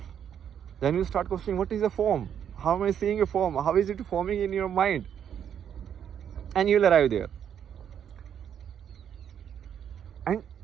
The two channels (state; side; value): quieter; left; 8.9 dB